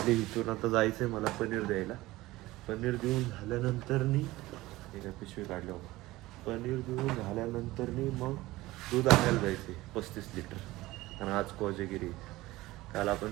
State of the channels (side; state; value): left; quieter; 18.4 dB